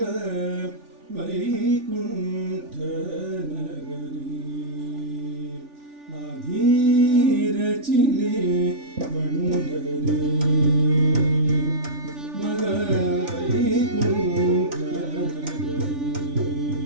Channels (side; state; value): left; late; 3.4 ms